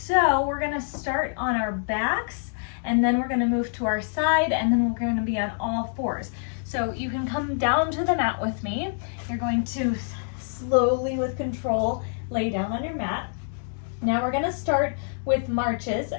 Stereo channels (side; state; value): right; silent; digital silence